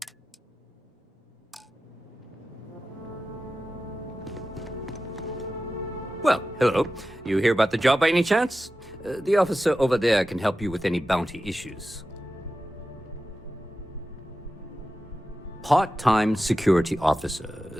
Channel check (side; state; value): both; normal; correlation 0.93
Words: Well, hello. You hear about the job by any chance? The officer over there can help you with any bounty issues. Part-time security